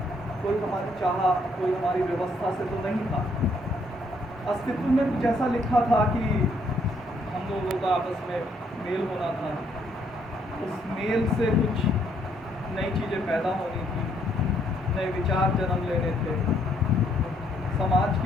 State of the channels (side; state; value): both; normal; correlation 0.70